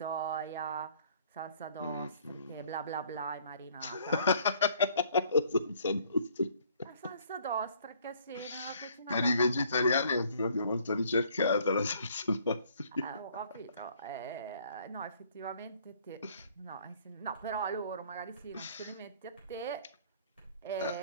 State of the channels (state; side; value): inverted; both; correlation -0.60